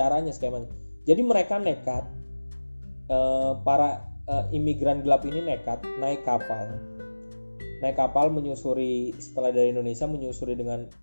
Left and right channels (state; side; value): inverted; both; correlation -1.00